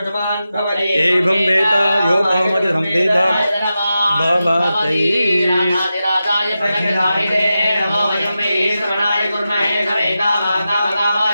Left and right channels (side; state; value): both; inverted; correlation -0.91